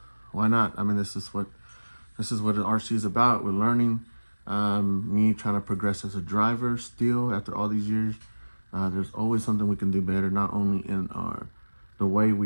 not? I mean, this is what an RC is about. We're learning. Me trying to progress as a driver still after all these years. There's always something we can do better, not only in the way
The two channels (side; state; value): both; inverted; correlation -1.00